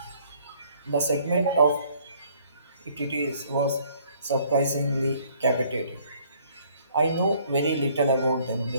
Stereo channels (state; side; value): inverted; both; correlation -0.61